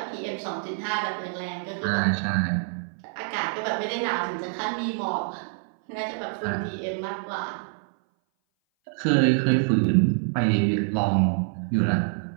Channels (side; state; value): left; silent; 58 dB below the other